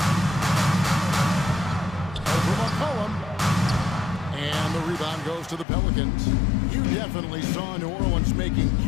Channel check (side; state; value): right; drops out; at 5.7 s